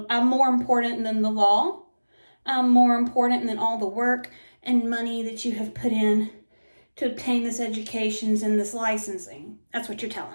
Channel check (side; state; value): both; inverted; correlation -1.00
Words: I'm more important than the law. I'm more important than all the work and money that you have put in to obtain this education and this licensing. That's what you're